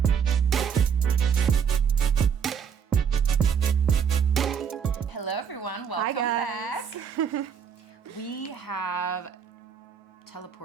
Hello everyone, welcome back. We have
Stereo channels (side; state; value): left; quieter; 7.3 dB